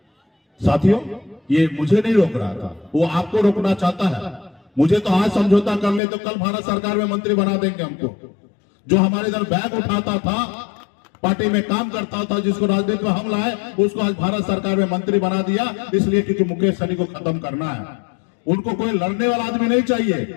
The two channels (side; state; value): right; drops out; at 6.0 s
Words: साथियों, ये मुझे नहीं रोक रहा था, वो आपको रोकना चाहता है। मुझे तो आज समझौता कर ले तो कल भारत सरकार में मंत्री बना देंगे हमको। जो हमारे इधर बैग उठाता था, पार्टी में काम करता था, जिसको राजनीति में हम लाए, उसको आज भारत सरकार में मंत्री बना दिया, इसलिए क्योंकि मुकेश सहनी को खत्म करना है। उनको कोई लड़ने वाला आदमी नहीं